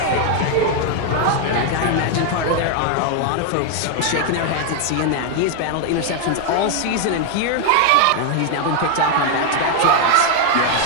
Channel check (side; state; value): both; different; correlation 0.01